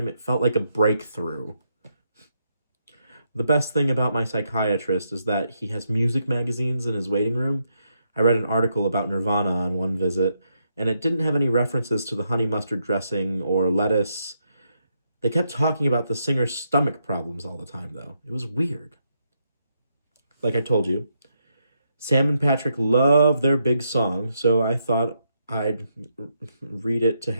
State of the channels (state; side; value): inverted; both; correlation -0.79